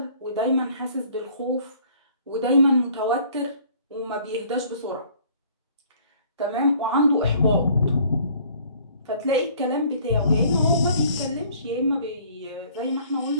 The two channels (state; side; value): inverted; both; correlation -0.56